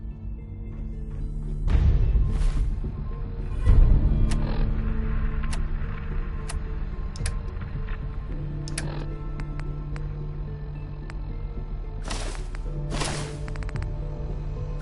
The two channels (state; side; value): identical; both; correlation 1.00